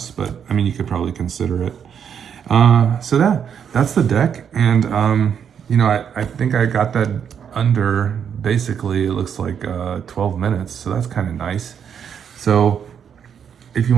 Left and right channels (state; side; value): quieter; left; 7.9 dB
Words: but I mean, you could probably consider it. So that's the deck. And, you know, I think I got that under, basically, it looks like 12 minutes. So that's kind of nice. So if you